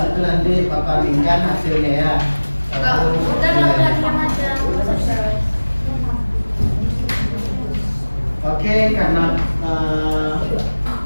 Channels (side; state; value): both; inverted; correlation -1.00